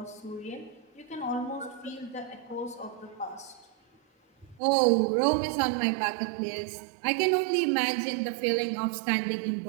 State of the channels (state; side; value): drops out; left; at 4.6 s